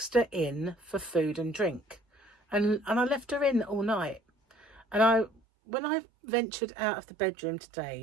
her in for food and drink, and I left her in all night. And when I ventured out of the bedroom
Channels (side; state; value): left; drops out; at 5.4 s